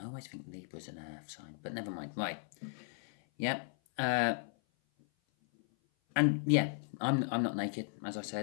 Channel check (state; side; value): silent; right; 54 dB below the other